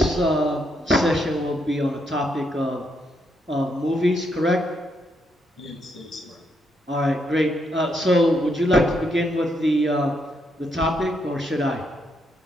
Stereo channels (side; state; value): both; normal; correlation 0.77